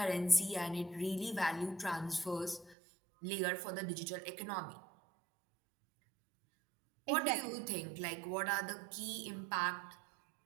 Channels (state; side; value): drops out; left; at 2.8 s